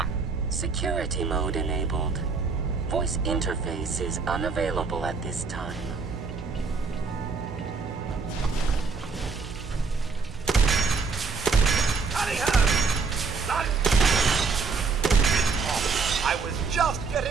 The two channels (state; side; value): quieter; left; 4.7 dB